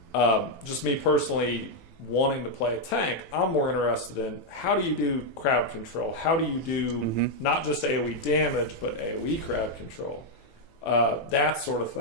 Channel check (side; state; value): right; late; 18 ms